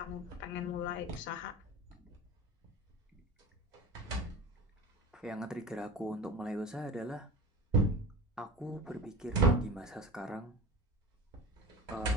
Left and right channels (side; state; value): both; normal; correlation 0.32